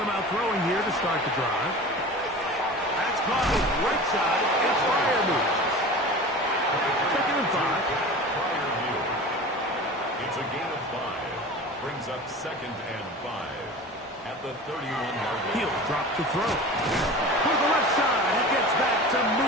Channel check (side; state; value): both; normal; correlation 0.35